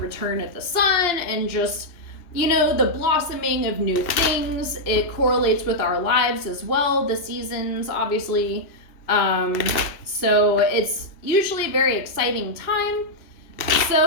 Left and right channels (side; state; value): right; late; 2.8 ms